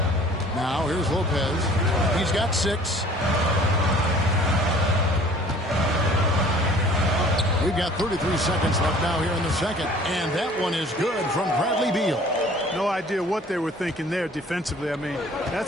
Now here's Lopez. He's got 6. We've got 33 seconds left now here in the second. And that one is good from Bradley Beal. No idea what they were thinking there defensively. I mean,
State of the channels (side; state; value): both; normal; correlation 0.51